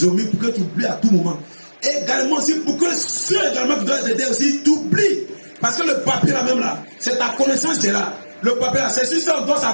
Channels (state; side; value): inverted; both; correlation -1.00